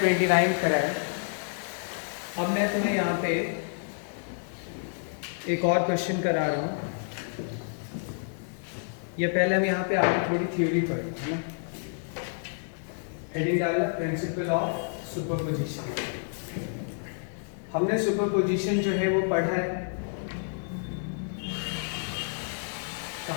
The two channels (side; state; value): right; silent; digital silence